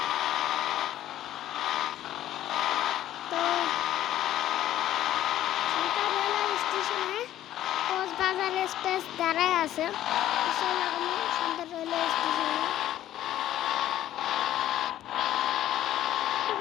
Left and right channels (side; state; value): right; quieter; 12.8 dB